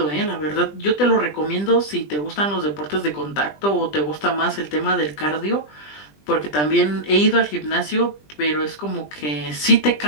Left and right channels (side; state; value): right; late; 20 ms